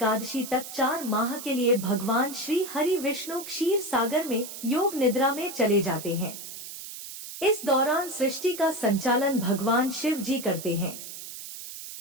तक 4 माह के लिए भगवान श्री हरि विष्णु क्षीर सागर में योग निद्रा में चले जाते हैं। इस दौरान सृष्टि का संचालन भगवान शिव जी करते हैं।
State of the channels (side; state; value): right; noise; hiss, 11 dB below the sound